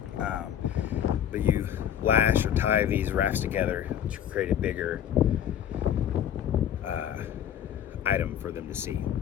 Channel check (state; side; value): quieter; right; 9.9 dB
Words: But you lash or tie these rafts together to create a bigger item for them to see.